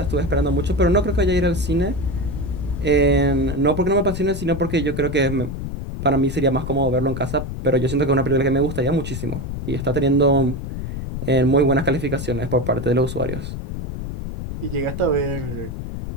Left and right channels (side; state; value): left; noise; rumble, 6 dB below the sound